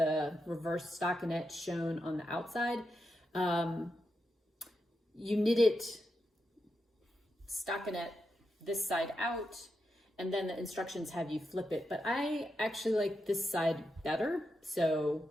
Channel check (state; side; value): normal; both; correlation 0.86